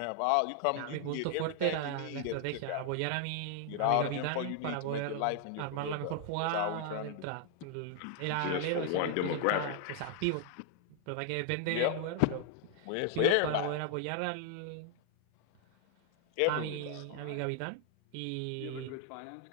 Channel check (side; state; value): both; different; correlation 0.00